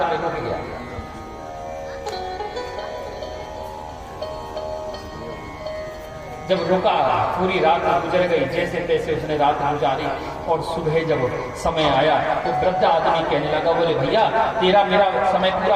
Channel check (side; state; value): both; identical; correlation 1.00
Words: में रुक गया। जब रुका, पूरी रात गुजर गई, जैसे तैसे उसने रात गुजारी, और सुबह जब समय आया तो वृद्ध आदमी कहने लगा, बोले भैया तेरा मेरा समय